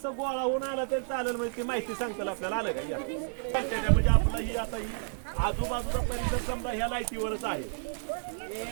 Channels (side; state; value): left; silent; digital silence